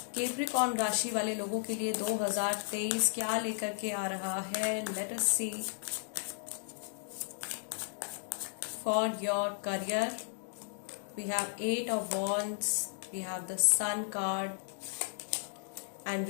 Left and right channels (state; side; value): silent; right; digital silence